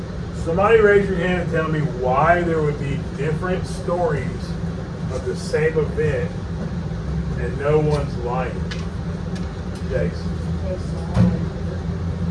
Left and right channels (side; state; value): both; identical; correlation 1.00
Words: Somebody raise your hand and tell me why there would be different stories of the same event and no one's lying. Jace.